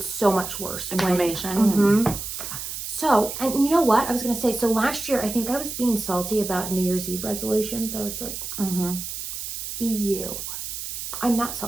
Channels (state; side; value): noise; right; hiss, 6 dB below the sound